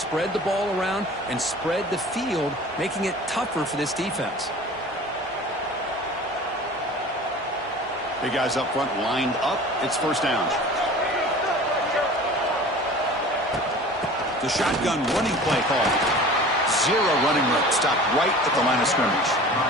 the ball around and spread the field, making it tougher for this defense. Big guys up front lined up. It's first down. The shotgun running play call. Zero running room. Stopped right at the line of scrimmage.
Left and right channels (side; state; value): both; normal; correlation 0.41